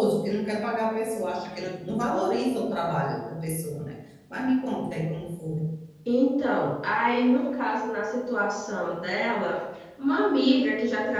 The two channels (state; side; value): identical; both; correlation 1.00